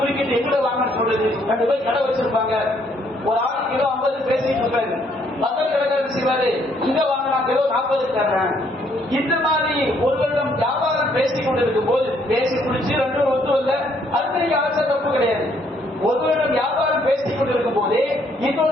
எங்கட வாங்கன்னு சொல்லுது. 2 பேர் கடை வச்சிருப்பாங்க, ஒரு ஆள் கிலோ 50 பேசிட்டு இருப்பாரு, பக்கத்து கடைக்காரர் செய்வாரு இங்க வாங்கினா கிலோ 40 தர்றேன். இந்த மாதிரி ஒருவரிடம் வியாபாரம் பேசிக் கொண்டிருக்கும் போது பேசி குடிச்சு 2 ஒத்து இல்ல, அது அவசர தப்பு கிடையாது. ஒருவரிடம் வியாபாரம் பேசிக் கொண்டிருக்கும் போதே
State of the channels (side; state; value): both; normal; correlation 0.68